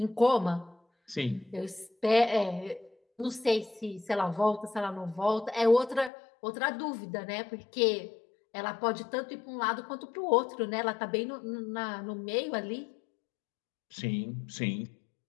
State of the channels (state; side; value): drops out; right; at 6.1 s